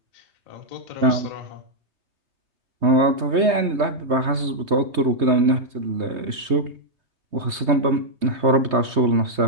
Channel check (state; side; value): late; left; 3.2 ms